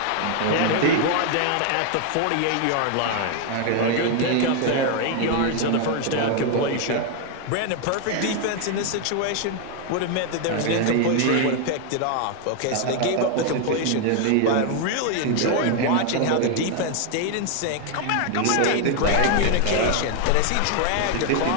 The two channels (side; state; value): both; different; correlation 0.01